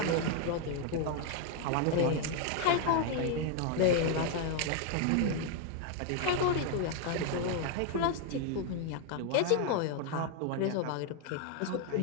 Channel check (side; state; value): both; different; correlation 0.00